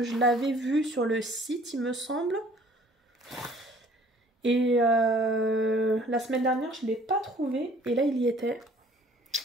je l'avais vu sur le site, il me semble. Et la semaine dernière, je ne l'ai pas trouvé. Et là, il y était.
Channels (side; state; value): both; normal; correlation 0.55